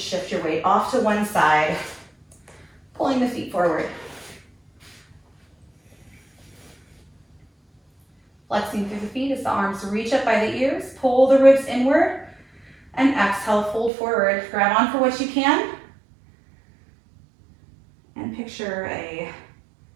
shift your weight off to one side, pulling the feet forward. Flexing through the feet as the arms reach up by the ears, pull the ribs inward, and exhale, fold forward. Grab on for what you can. And picture a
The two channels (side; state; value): left; drops out; at 13.9 s